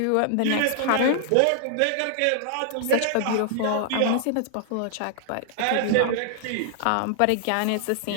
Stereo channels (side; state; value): both; different; correlation -0.01